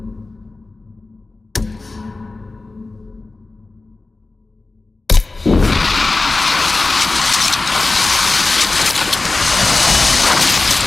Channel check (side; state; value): right; quieter; 3.4 dB